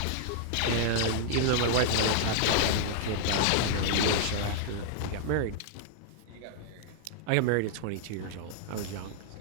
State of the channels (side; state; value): both; different; correlation -0.01